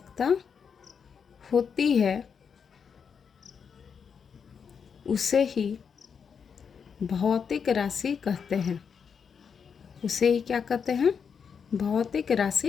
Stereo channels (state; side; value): quieter; right; 6.6 dB